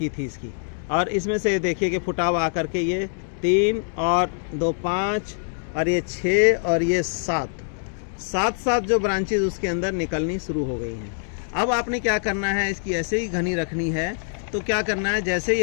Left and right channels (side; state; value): right; silent; digital silence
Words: थी इसकी, और इसमें से देखिए कि फुटाव आकर के ये 3 और 2 5 और ये 6 और ये 7 जो ब्रांचेज उसके अंदर निकलनी शुरू हो गई हैं। अब आपने क्या करना है, इसकी ऐसे ही घनी रखनी है। तो क्या करना है, जैसे